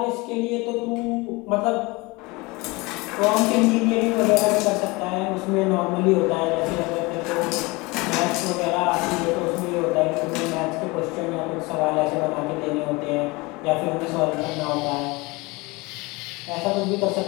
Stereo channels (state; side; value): quieter; right; 24.5 dB